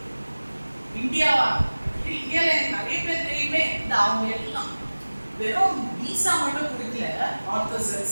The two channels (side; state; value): both; inverted; correlation -1.00